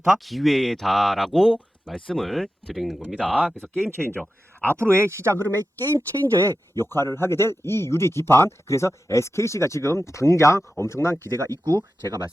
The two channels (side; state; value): both; normal; correlation 0.92